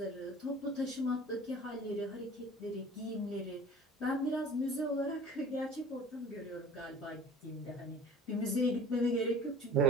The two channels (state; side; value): normal; both; correlation 0.43